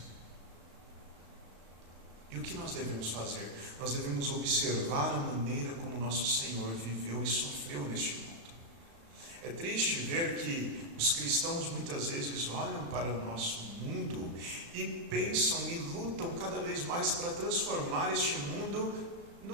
E o que nós devemos fazer? Nós devemos observar a maneira como nosso Senhor viveu e sofreu neste mundo. É triste ver que os cristãos muitas vezes olham para o nosso mundo e pensam e lutam cada vez mais para transformar este mundo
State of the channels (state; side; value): late; left; 35 ms